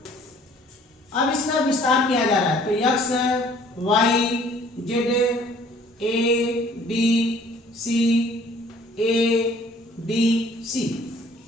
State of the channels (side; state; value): both; normal; correlation 0.56